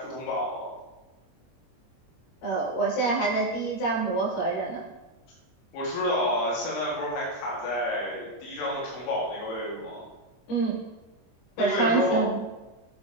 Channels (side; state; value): right; late; 23 ms